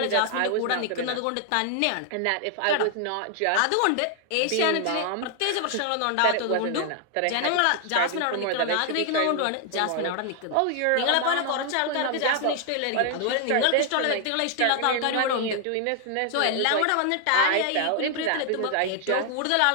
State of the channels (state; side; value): different; both; correlation 0.00